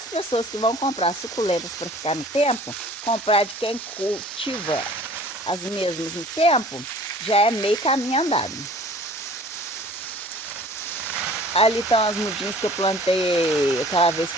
pessoas que vão comprar suculentas para ficar no tempo, comprar de quem cultiva as mesmas no tempo, já é meio caminho andado. Ali estão as mudinhas que eu plantei aquela vez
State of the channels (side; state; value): both; normal; correlation 0.49